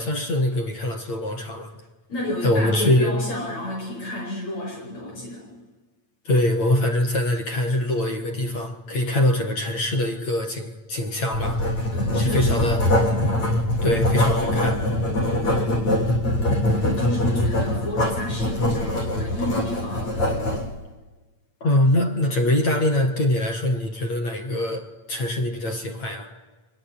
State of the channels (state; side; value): late; right; 8.8 ms